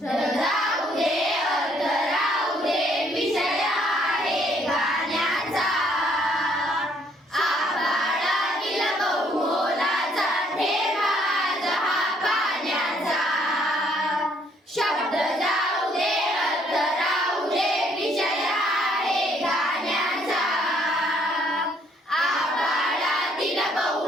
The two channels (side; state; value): both; normal; correlation 0.66